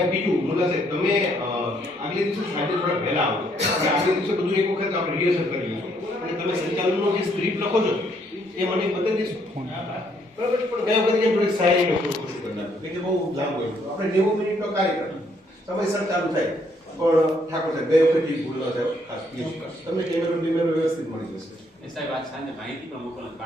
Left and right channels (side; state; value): both; normal; correlation 0.69